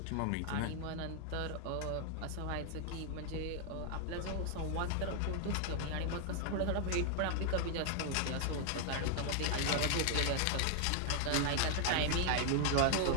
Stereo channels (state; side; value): different; both; correlation 0.00